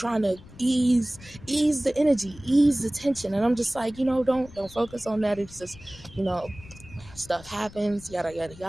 to ease the energy, ease the tension. And I'm just like, you know, don't focus on that. It's just, you know, stuff happens, yada yada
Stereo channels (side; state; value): left; noise; rumble, 20 dB below the sound